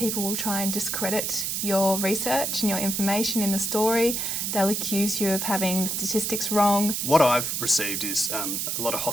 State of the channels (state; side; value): noise; right; hiss, 1 dB below the sound